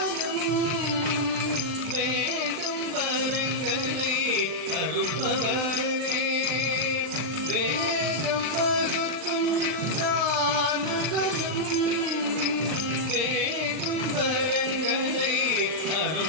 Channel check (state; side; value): late; left; 39 ms